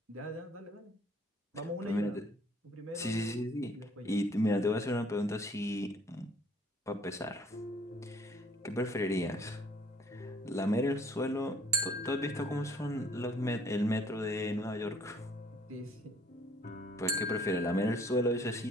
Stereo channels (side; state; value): both; normal; correlation 0.60